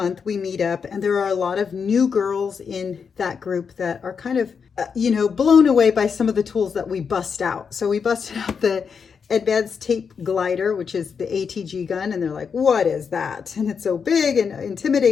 we meet up and there are a lot of new girls in that group that are kind of, blown away by some of the tools that we bust out. So we busted out the advanced tape glider, which is the ATG gun, and they're like, what is that? And it's so big and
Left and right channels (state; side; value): quieter; right; 6.2 dB